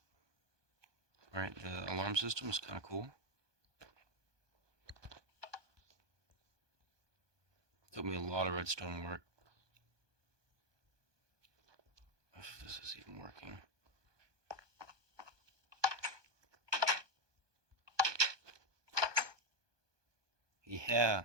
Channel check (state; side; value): late; left; 1.2 ms